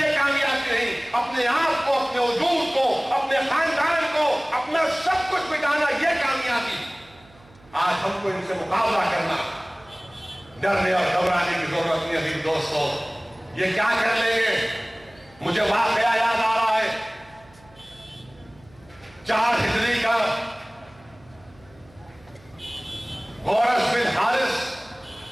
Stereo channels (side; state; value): right; noise; hum, 27 dB below the sound